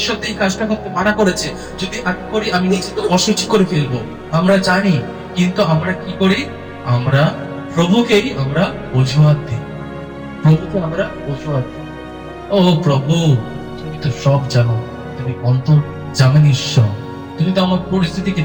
তো এই কাজটা করতে মানা করেছে, যদি আমি করি আমি নিজেকে অসুচি করে ফেলবো। আমরা জানি, কিন্তু আমরা কি করি? আমরা প্রভুকেই আমরা অজুহাত দিই, প্রভুকে আমরা অজুহাত দিই। ও প্রভু, তুমি তো সব জানো, তুমি অন্তর জানেন ঈশ্বর, তুমি তো আমার পরিস্থিতিকে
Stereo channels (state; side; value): identical; both; correlation 1.00